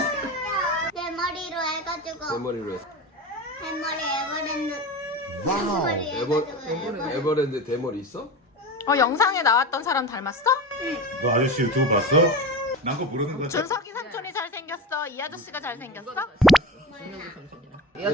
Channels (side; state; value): both; normal; correlation 0.27